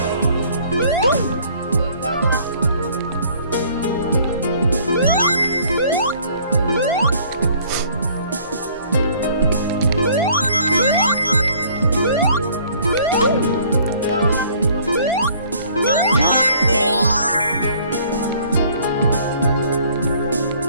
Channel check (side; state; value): both; inverted; correlation -0.57